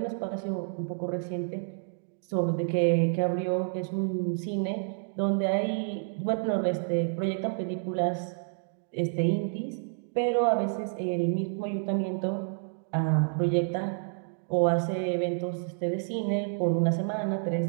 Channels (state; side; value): silent; left; digital silence